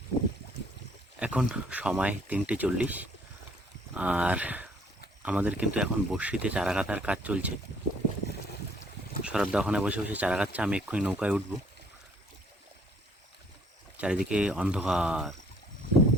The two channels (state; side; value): normal; both; correlation 0.62